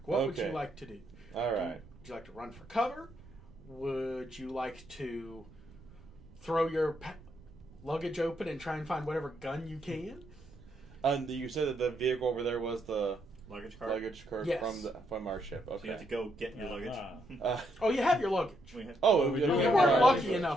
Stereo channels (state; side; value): noise; right; rumble, 22 dB below the sound